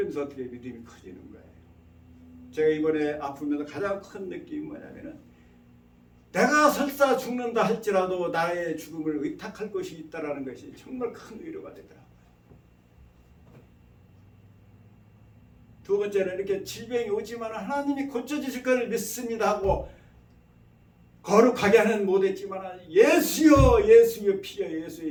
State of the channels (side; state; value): both; identical; correlation 1.00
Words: 어떻게 믿음이 커지는 거예요. 제가 이번에 아프면서 가장 큰 느낌이 뭐냐면은 내가 설사 죽는다 할지라도 나의 죽음을 의탁할 것이 있다라는 것이 정말 큰 위로가 되더라고요. 두 번째는 이렇게 질병이 오지만 하나님이 고쳐주실 것을 믿습니다 하고 거룩하게 하는 못했지만 예수여 예수여 피여